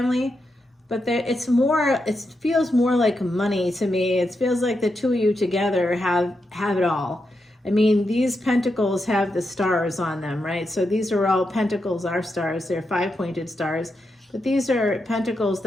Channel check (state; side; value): normal; both; correlation 0.85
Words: but it feels more like money to me. It feels like the two of you together have it all. I mean, these pentacles have the stars on them, right? So these are all pentacles, are stars. They're 5-pointed stars, but these are pentacles